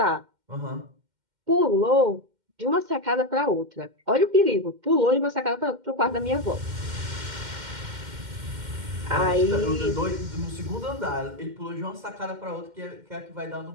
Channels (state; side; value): late; left; 2.1 ms